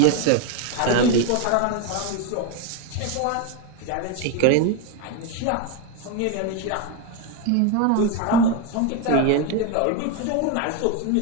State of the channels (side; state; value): both; different; correlation 0.02